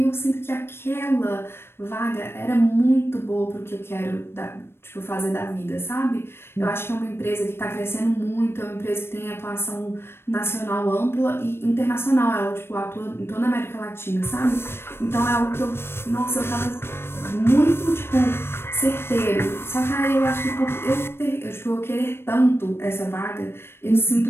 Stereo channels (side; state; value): right; late; 0.12 ms